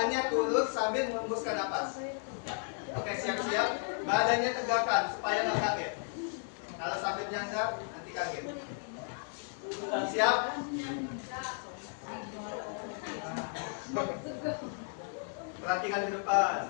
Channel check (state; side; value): silent; right; 55 dB below the other